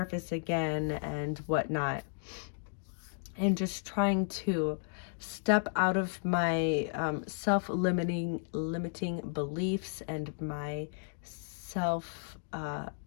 again and whatnot, and just trying to step out of my limiting beliefs and my self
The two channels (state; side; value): silent; right; digital silence